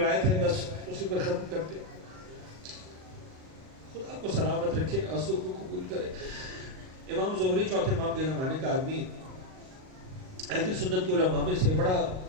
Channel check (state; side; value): late; left; 38 ms